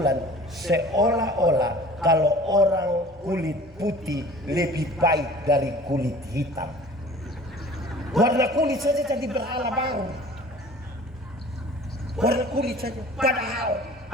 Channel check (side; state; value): both; normal; correlation 0.46